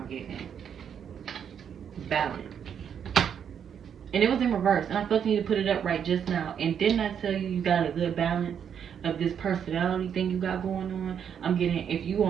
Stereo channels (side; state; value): left; quieter; 8.1 dB